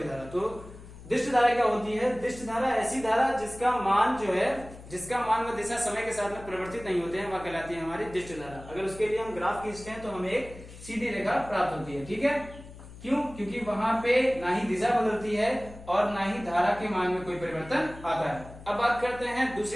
धारा। तो दिष्ट धारा क्या होती है? दिष्ट धारा ऐसी धारा जिसका मान जो है, जिसका मान व दिशा समय के साथ में परिवर्तित नहीं होते हैं, वह कहलाती है हमारी दिष्ट धारा। अगर उसके लिए हम ग्राफ खींचते हैं तो हमें एक सीधी रेखा प्राप्त होती है। ठीक है, क्यों? क्योंकि वहां पे ना ही दिशा बदलती है और ना ही धारा के मान में कोई परिवर्तन आता है। अब बात करते हैं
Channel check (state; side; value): noise; left; hum, 16 dB below the sound